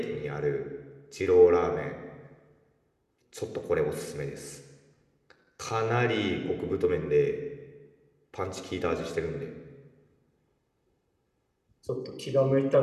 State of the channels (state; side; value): identical; both; correlation 1.00